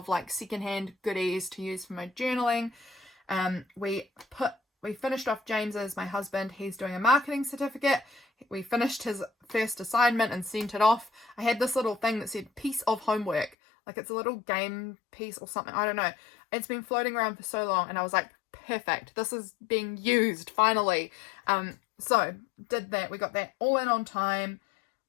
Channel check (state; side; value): drops out; right; at 13.6 s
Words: like secondhand goodies to use for my journaling. We finished off James's, my husband, he's doing a marketing certificate. We finished his first assignment and sent it off. I had this little thing that said piece of homework, like it's a little game piece or something, I don't know. It's been floating around for so long, and I was like, perfect, this is being used finally. So did that, we got that all in on time,